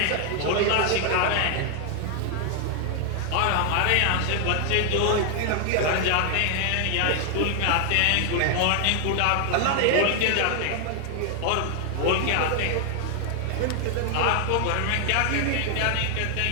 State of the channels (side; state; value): both; different; correlation 0.00